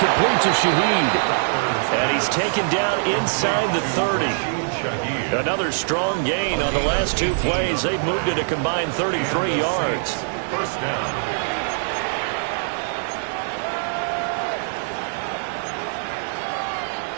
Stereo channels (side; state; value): left; silent; 64 dB below the other